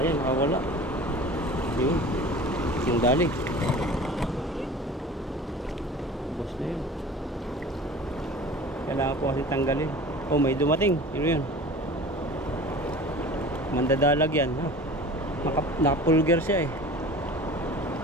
nakawala. Yun. Yung dali. Boss na yun. Kailangan po kasi tanggalin. Oh, may dumating. Yun yun. Mandadalag yan. Oh. Nakapulger siya eh.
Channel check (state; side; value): normal; both; correlation 0.40